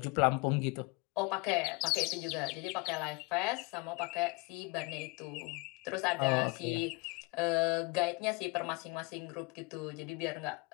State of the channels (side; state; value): right; quieter; 26.6 dB